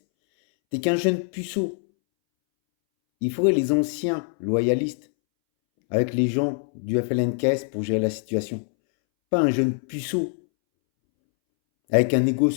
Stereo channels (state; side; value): silent; right; 63 dB below the other